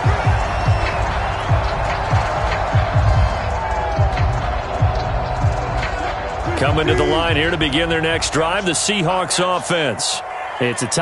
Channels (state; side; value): identical; both; correlation 1.00